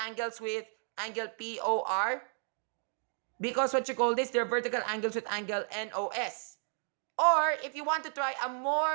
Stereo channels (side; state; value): left; silent; 56 dB below the other